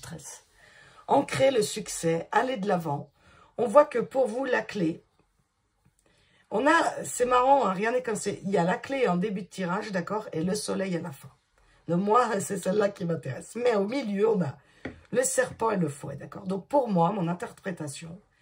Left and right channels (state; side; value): identical; both; correlation 1.00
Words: ancrer le succès, aller de l'avant. On voit que pour vous, la clé, c'est marrant, hein, rien n'est comme c'est, il y a la clé en début de tirage, d'accord, et le soleil à la fin. Donc moi, c'est celle-là qui m'intéresse. Mais au milieu, on a le serpent et le fouet, d'accord? Donc pour moi, mon interprétation,